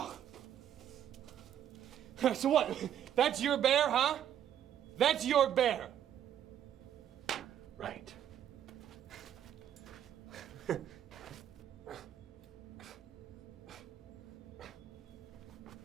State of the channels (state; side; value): quieter; left; 10.2 dB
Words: So what? That's your bear, huh? That's your bear. Right.